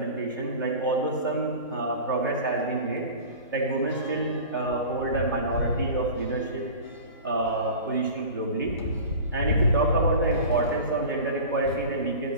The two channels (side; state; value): both; inverted; correlation -0.36